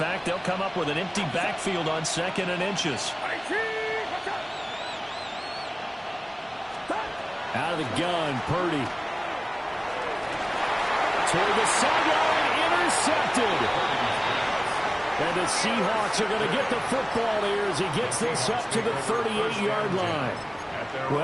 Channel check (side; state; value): both; identical; correlation 1.00